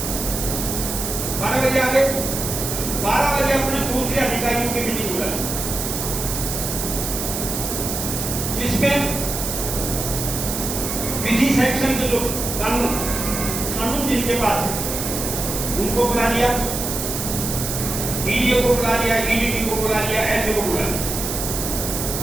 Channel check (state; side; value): noise; right; hiss, 4 dB below the sound